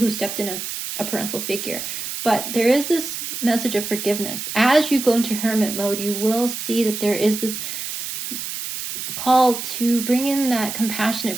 stepped in as a parental figure. But there is this message of forgiveness. As you go into hermit mode, you will see that there is this call to bring in that compassionate,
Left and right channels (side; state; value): right; noise; hiss, 6 dB below the sound